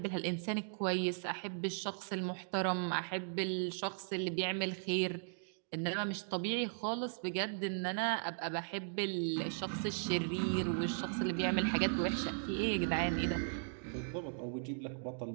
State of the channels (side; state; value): left; silent; digital silence